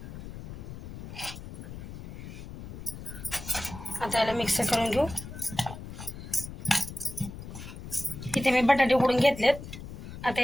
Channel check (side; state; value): left; noise; rumble, 11 dB below the sound